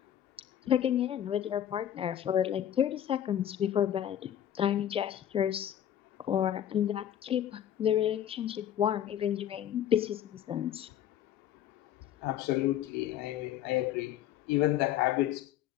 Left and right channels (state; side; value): quieter; right; 10.8 dB